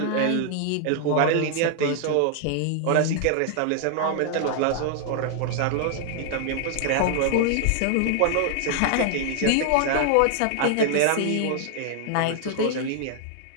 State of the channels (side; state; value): both; different; correlation 0.00